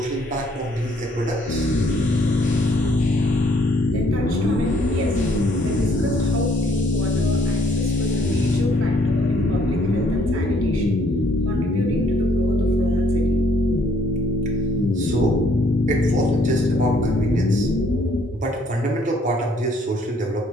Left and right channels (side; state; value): both; normal; correlation 0.64